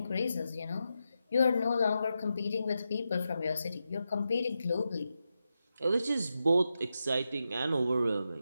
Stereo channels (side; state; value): both; inverted; correlation -0.88